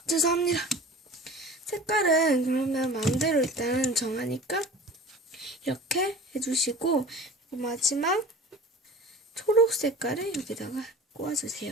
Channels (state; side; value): normal; both; correlation 0.39